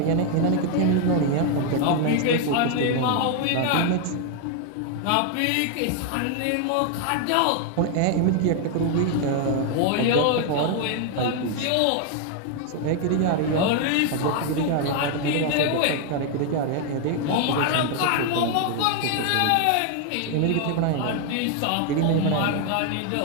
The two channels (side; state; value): both; different; correlation 0.00